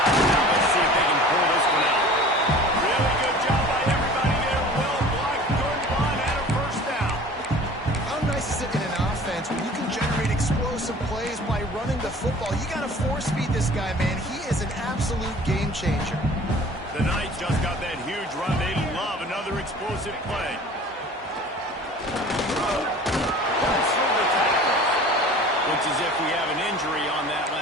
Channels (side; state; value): both; normal; correlation 0.44